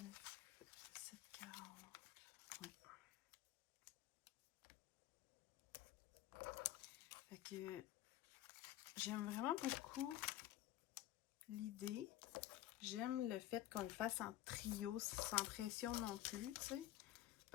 740. Ouais. Fait que j'aime vraiment beaucoup l'idée. J'aime le fait qu'on le fasse en trio, sans pression non plus, tu sais.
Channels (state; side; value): quieter; right; 13.8 dB